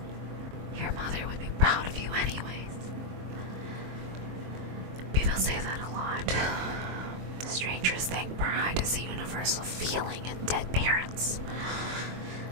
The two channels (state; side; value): late; left; 23 ms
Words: Your mother would be proud of you anyways. People say that a lot. Strangers think pride is a universal feeling in dead parents.